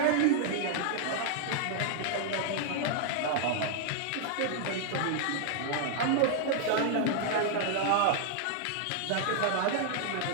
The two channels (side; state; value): both; different; correlation -0.01